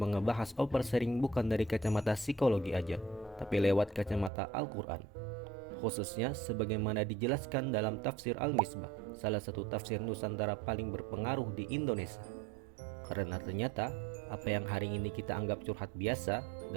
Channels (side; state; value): left; drops out; at 4.3 s